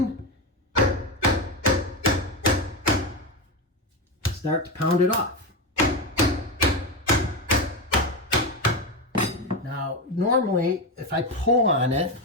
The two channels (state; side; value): normal; both; correlation 0.15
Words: start to pound it off. Now, normally, if I pull on it